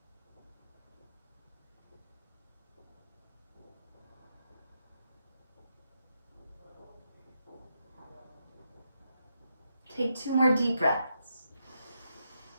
Take 2 more deep breaths.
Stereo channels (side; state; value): both; inverted; correlation -0.83